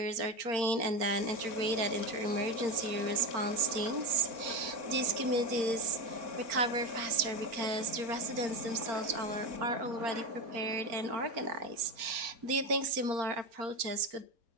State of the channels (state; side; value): late; left; 4.4 ms